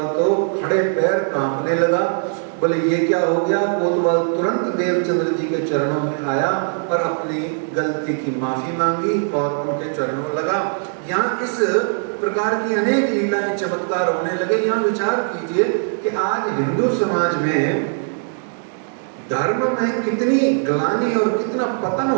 तो खड़े पैर कांपने लगा, बोले ये क्या हो गया? कोतवाल तुरंत देवचंद्र जी के चरणों में आया और अपनी गलती की माफी मांगी और उनके चरणों में लगा। यहाँ इस प्रकार की अनेक लीलाएं चमत्कार होने लगे। यहाँ विचार कीजिए कि आज हिंदू समाज में धर्म में कितनी ग्लानि और कितना पतन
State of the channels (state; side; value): silent; left; digital silence